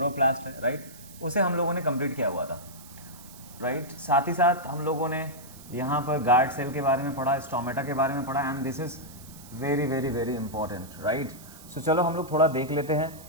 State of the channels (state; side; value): noise; right; hiss, 19 dB below the sound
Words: है, राइट, उसे हम लोगों ने कंप्लीट किया हुआ था, राइट. साथ ही साथ हम लोगों ने यहाँ पर गार्ड सेल के बारे में पढ़ा, स्टोमेटा के बारे में पढ़ा, and this is very very very important, right. So चलो हम लोग थोड़ा देख लेते हैं